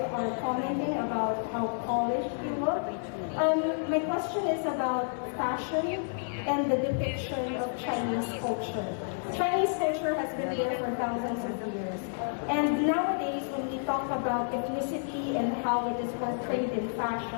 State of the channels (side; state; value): right; silent; digital silence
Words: are commenting about how polished you look. My question is about fashion and the depiction of Chinese culture. Chinese culture has been there for thousands of years. And nowadays, when we talk about ethnicity and how it is portrayed in